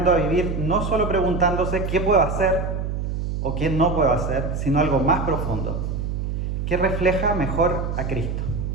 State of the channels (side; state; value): right; noise; hum, 3 dB below the sound